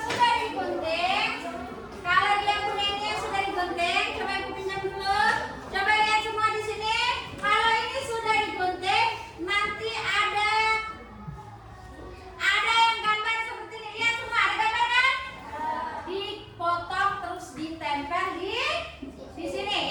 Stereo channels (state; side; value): identical; both; correlation 1.00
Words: digunting, kalau dia punya ini yang sudah digunting, coba ibu pinjam dulu. Coba lihat semua di sini. Kalau ini sudah digunting, nanti ada yang gambar seperti ini. Lihat semua, ada gambar kan? Dipotong terus ditempel di